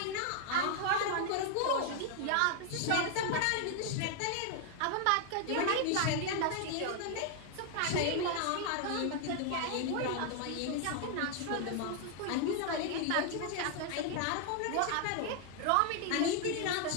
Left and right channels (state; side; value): different; both; correlation 0.00